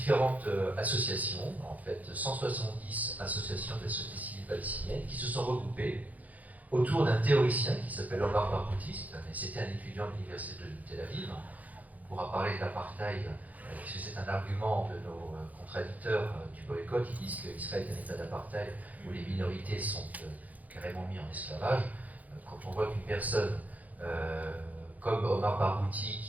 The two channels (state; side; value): late; left; 0.077 ms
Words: associations, en fait 170 associations de la société civile palestinienne, qui se sont regroupées autour d'un théoricien qui s'appelle Omar Barghouti, c'était un étudiant de l'université de Tel Aviv. On pourra parler de l'apartheid, puisque c'est un argument de nos contradicteurs du boycott. Ils disent qu'Israël est un état d'apartheid où les minorités sont carrément mises en esclavage. Quand on voit qu'une personne comme Omar Barghouti,